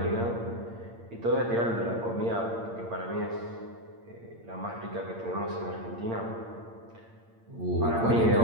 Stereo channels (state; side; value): late; left; 8.7 ms